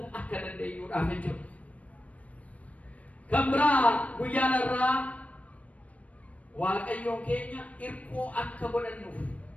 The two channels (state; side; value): late; right; 0.067 ms